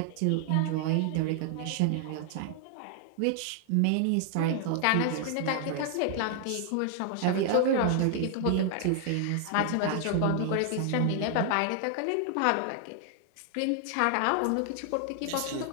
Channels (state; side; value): different; both; correlation 0.00